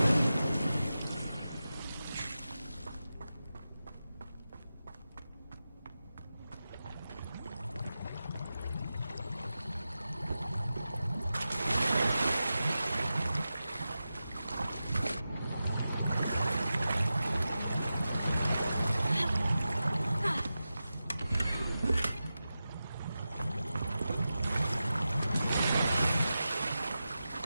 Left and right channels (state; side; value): inverted; both; correlation -0.93